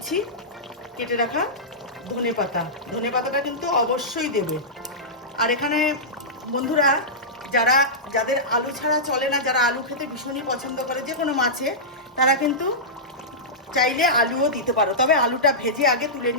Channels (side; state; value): both; normal; correlation -0.13